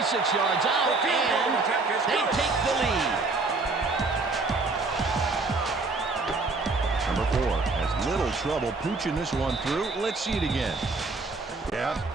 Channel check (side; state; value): left; quieter; 3.7 dB